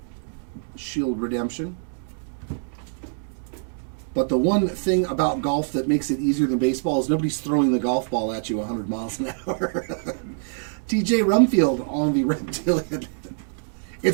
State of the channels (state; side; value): silent; left; digital silence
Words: shield redemption. But the one thing about golf that makes it easier than baseball is nobody's throwing the golf ball at you 100 miles an hour. TJ Rumfield on the reptilian.